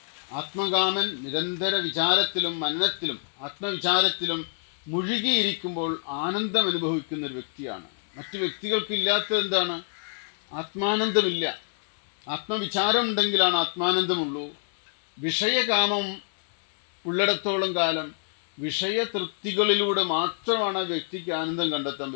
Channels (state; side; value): silent; right; 60 dB below the other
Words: ആത്മകാമൻ നിരന്തര വിചാരത്തിലും മനനത്തിലും ആത്മവിചാരത്തിലും മുഴുകിയിരിക്കുമ്പോൾ ആനന്ദം അനുഭവിക്കുന്ന ഒരു വ്യക്തിയാണ്. മറ്റു വ്യക്തികൾക്കില്ലാത്തത് എന്താണ്? ആത്മാനന്ദമില്ല. ആത്മവിചാരം ഉണ്ടെങ്കിലാണ് ആത്മാനന്ദമുള്ളൂ. വിഷയകാമം ഉള്ളിടത്തോളം കാലം വിഷയതൃപ്തികളിലൂടെ മാത്രമാണ് ആ വ്യക്തിക്ക് ആനന്ദം കണ്ടെത്താൻ